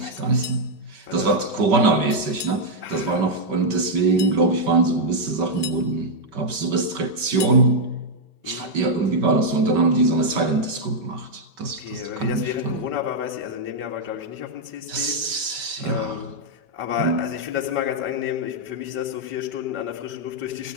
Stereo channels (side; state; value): left; late; 5.2 ms